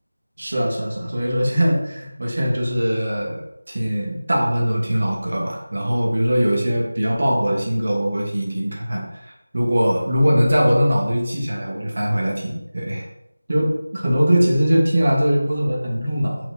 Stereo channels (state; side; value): inverted; both; correlation -0.97